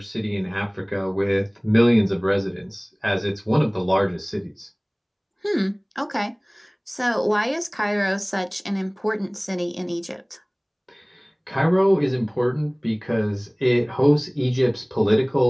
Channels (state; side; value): identical; both; correlation 1.00